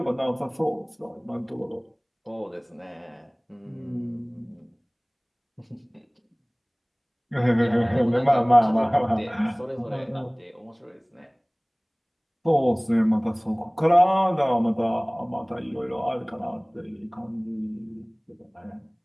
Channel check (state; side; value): identical; both; correlation 1.00